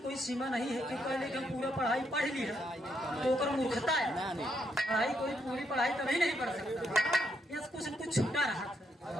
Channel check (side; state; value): both; normal; correlation 0.77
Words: कोई सीमा नहीं है कि पहले हम पूरा पढ़ाई पढ़ ली है तो कर मूर्खता है। पढ़ाई कोई पूरी पढ़ाई कभी नहीं पढ़ सकता, यह कुछ न कुछ छूटा